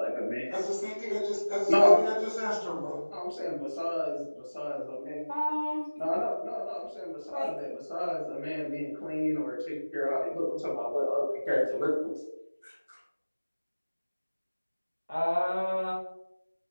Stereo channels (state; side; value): inverted; both; correlation -1.00